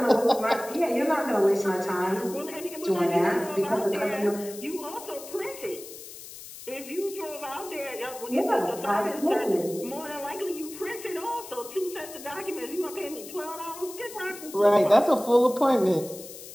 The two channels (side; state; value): left; noise; hiss, 14 dB below the sound